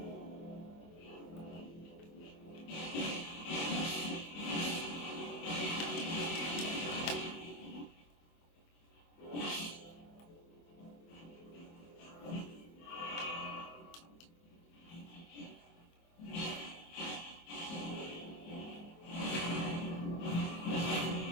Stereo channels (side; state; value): right; late; 24 ms